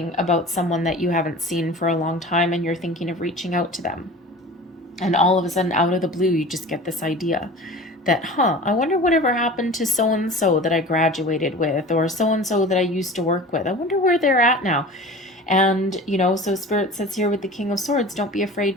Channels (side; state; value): both; normal; correlation 0.38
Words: about someone that you haven't seen for a long time and you're thinking of reaching out to them. And all of a sudden, out of the blue, you just get this idea that, I wonder whatever happened to so-and-so that I graduated with, or so-and-so that I used to work with. I wonder where they're at now. And, so Spirit says here with the King of Swords, don't be